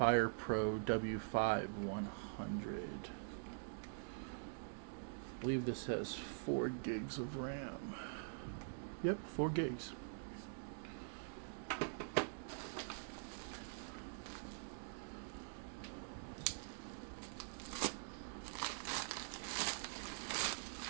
W5 100. I believe this has 4 gigs of RAM. Yep, 4 gigs.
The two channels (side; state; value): left; silent; digital silence